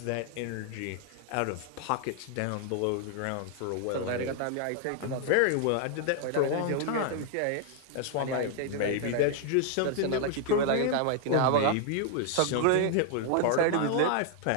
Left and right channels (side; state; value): both; different; correlation 0.00